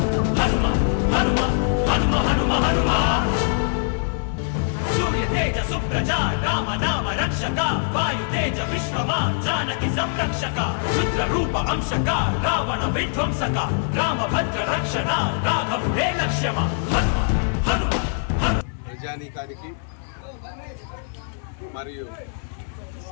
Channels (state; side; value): silent; right; digital silence